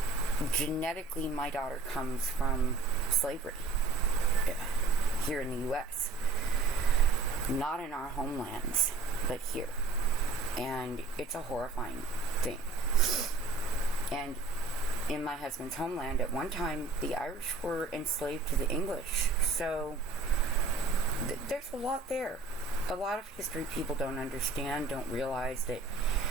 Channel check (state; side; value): quieter; left; 3.8 dB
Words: genetically, my daughter comes from slavery here in the U.S. Not in our homelands, but here. And it's a horrifying thing. And in my husband's homeland, at one time, the Irish were enslaved to the English. So there's a lot there. A lot of history people don't understand, don't realize that